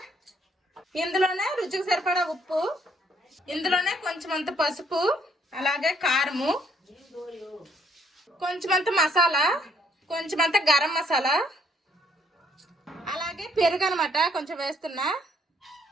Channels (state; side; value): normal; both; correlation 0.67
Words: ఇందులోనే రుచికి సరిపడా ఉప్పు, ఇందులోనే కొంచెమంత పసుపు, అలాగే కారము, కొంచెమంత మసాలా, కొంచెమంత గరం మసాలా, అలాగే పెరుగు అనమాట కొంచెం వేస్తున్నా.